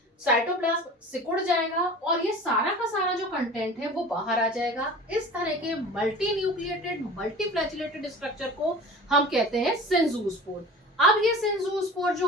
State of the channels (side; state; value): both; normal; correlation 0.38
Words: साइटोप्लाज्म सिकुड़ जाएगा, और ये सारा का सारा जो कंटेंट है वो बाहर आ जाएगा। इस तरह के multi nucleated multi flagellated structure को हम कहते हैं सिंजूस्पोर। अब ये सिंजूस्पोर जो